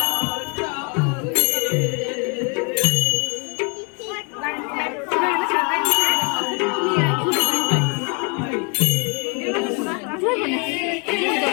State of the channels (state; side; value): quieter; right; 34.9 dB